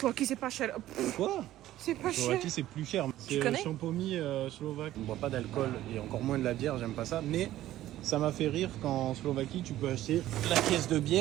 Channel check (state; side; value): quieter; left; 14.1 dB